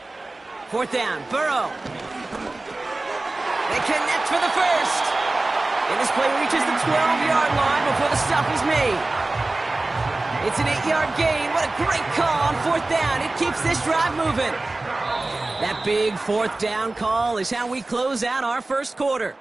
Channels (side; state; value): left; quieter; 3.0 dB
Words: 4th down, Burrow. They connect for the first. And this play reaches the 12-yard line before the stop is made. It's an 8-yard gain. What a great call on 4th down. It keeps this drive moving. That big 4th down call is how we close out our first quarter.